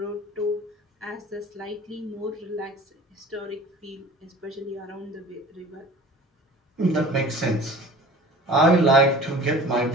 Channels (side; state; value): both; normal; correlation 0.43